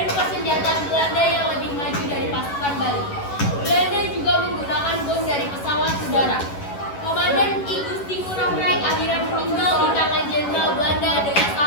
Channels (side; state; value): right; late; 11 ms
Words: persenjataan Belanda yang lebih maju dari pasukan Bali. Belanda juga menggunakan bom dari pesawat udara. Komandan Igusti Ngurah Rai akhirnya meninggal di tangan Jenderal Belanda dengan